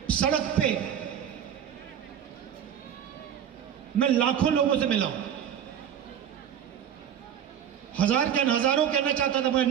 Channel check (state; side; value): quieter; left; 9.2 dB